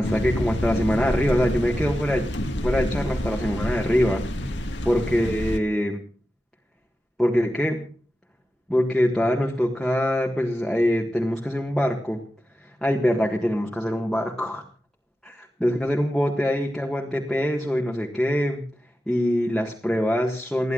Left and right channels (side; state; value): both; normal; correlation 0.92